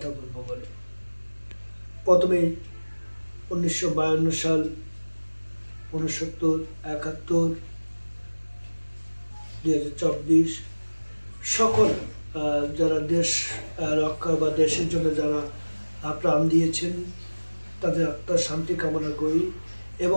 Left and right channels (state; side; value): inverted; both; correlation -1.00